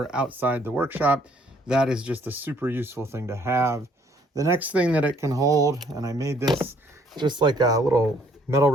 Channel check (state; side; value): normal; both; correlation 0.64